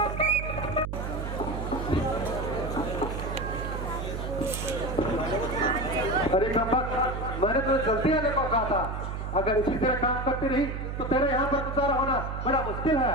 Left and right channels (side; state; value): right; noise; hum, 5 dB below the sound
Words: अरे कपक, मैंने तो जल्दी आने को कहा था। अगर इसी तरह काम करती रही तो तेरे यहाँ पर गुजारा होना बड़ा मुश्किल